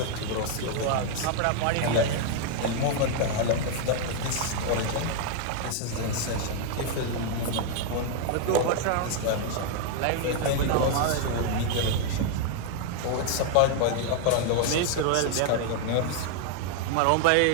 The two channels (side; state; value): both; different; correlation 0.00